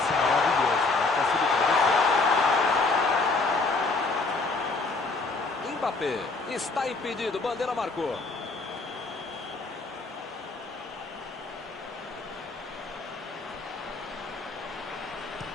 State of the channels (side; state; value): right; quieter; 3.7 dB